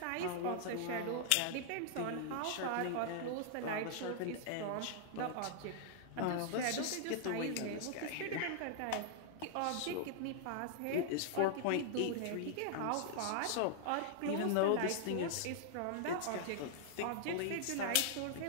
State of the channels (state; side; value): different; both; correlation -0.01